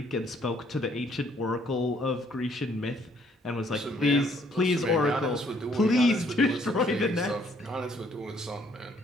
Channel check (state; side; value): normal; both; correlation 0.65